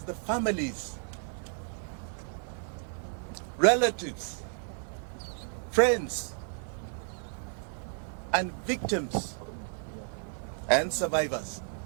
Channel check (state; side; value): silent; left; 56 dB below the other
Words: the families, relatives, friends, and victims and survivors